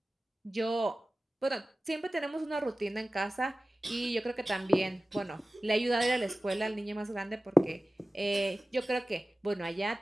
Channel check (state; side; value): normal; both; correlation 0.96